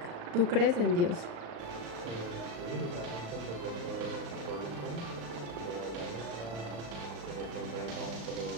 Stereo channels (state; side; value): late; left; 35 ms